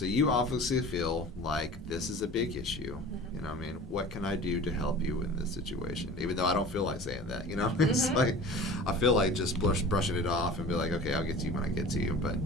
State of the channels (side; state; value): both; normal; correlation 0.39